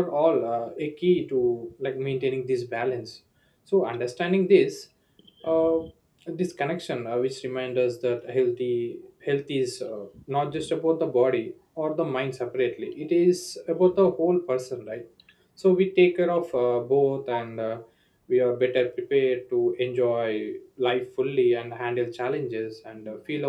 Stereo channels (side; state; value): both; identical; correlation 1.00